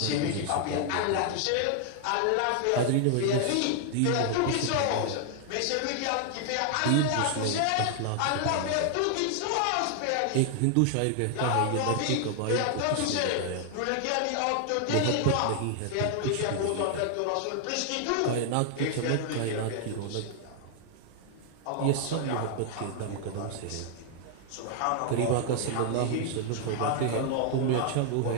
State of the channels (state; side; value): different; both; correlation 0.00